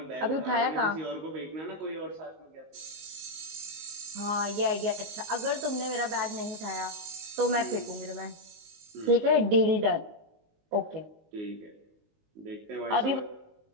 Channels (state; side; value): late; left; 19 ms